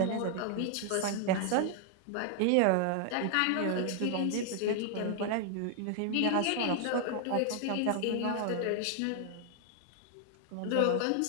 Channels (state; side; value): different; both; correlation 0.00